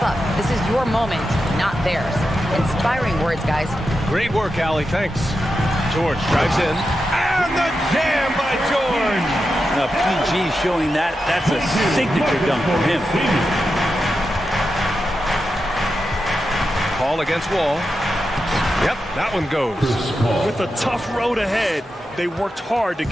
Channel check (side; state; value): both; normal; correlation 0.89